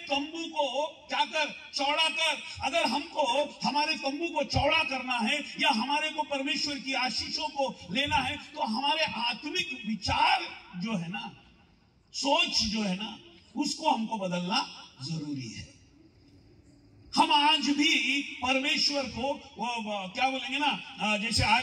तंबू को क्या कर, चौड़ा कर। अगर हमको हमारे तंबू को चौड़ा करना है या हमारे को परमेश्वर की आशीषों को लेना है, तो हमारे आत्मिक विचार जो है ना, सोच जो है ना, उसको हमको बदलना जरूरी है। हम आज भी परमेश्वर को वो क्या बोलेंगे ना, जैसे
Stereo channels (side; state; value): both; identical; correlation 1.00